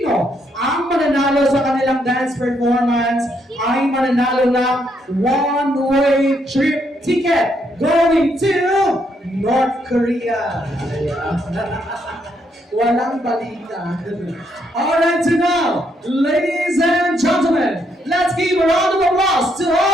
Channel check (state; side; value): normal; both; correlation 0.75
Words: ang mananalo sa kanilang dance performance ay mananalo ng one-way trip ticket going to North Korea. Walang balita. Alright, so now, ladies and gentlemen, let's give a round of applause to